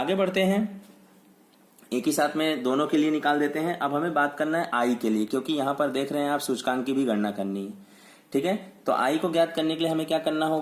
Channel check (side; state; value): both; identical; correlation 1.00